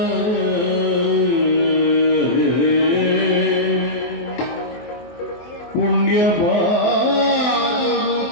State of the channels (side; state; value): right; late; 24 ms